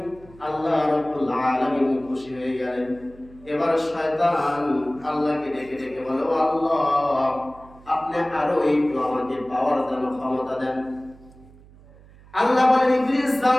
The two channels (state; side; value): noise; right; hum, 23 dB below the sound